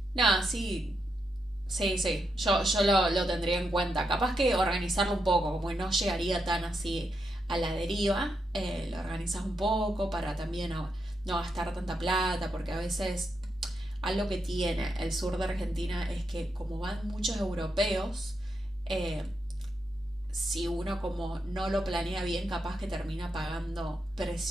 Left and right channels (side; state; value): both; normal; correlation 0.83